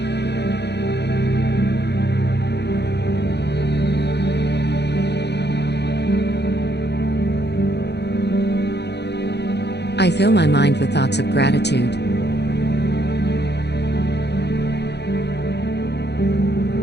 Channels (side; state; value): right; late; 0.49 ms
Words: I fill my mind with thoughts of gratitude.